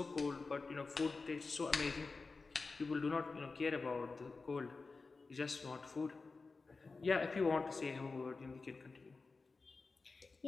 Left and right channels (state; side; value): quieter; right; 4.1 dB